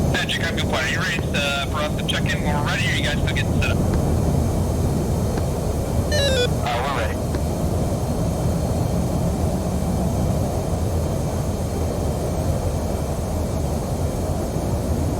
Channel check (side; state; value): both; identical; correlation 1.00